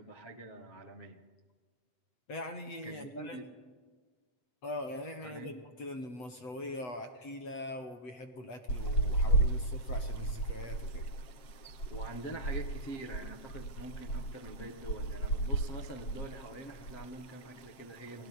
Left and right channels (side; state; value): right; late; 8.0 ms